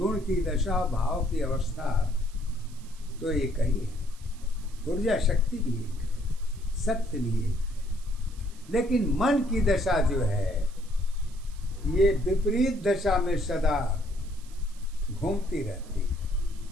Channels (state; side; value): noise; right; hiss, 24 dB below the sound